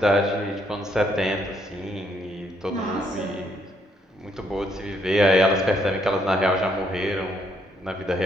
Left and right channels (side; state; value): both; normal; correlation 0.72